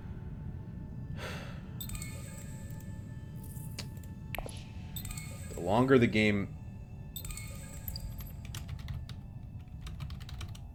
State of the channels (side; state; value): both; identical; correlation 1.00